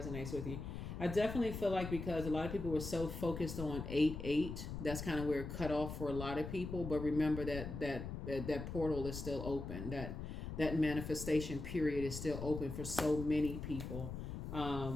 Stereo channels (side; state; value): left; noise; rumble, 6 dB below the sound